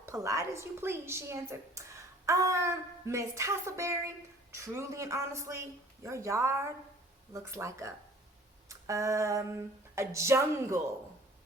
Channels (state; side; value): normal; both; correlation 0.50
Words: polite as you please, she answered. Miss Tussleberry, truly and honestly, your yard looks like a jungle.